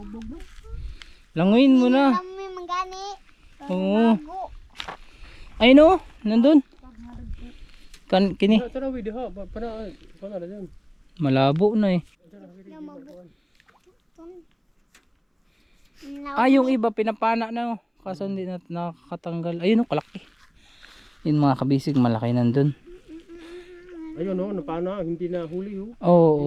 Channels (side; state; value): both; identical; correlation 1.00